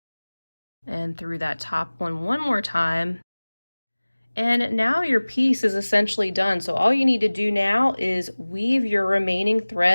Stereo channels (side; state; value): both; inverted; correlation -1.00